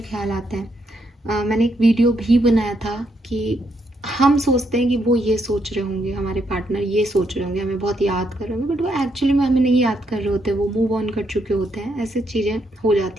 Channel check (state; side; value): normal; both; correlation 0.77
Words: ख्याल आते हैं। मैंने एक वीडियो भी बनाया था कि हम सोचते हैं कि वो ये सोच रहे होंगे, हमारे पार्टनर ये सोच रहे होंगे, हमें बहुत याद कर रहे होंगे, बट वो एक्चुअली में हमें नहीं याद कर रहे होते, वो मूव ऑन कर चुके होते हैं। ऐसी चीज़ें हो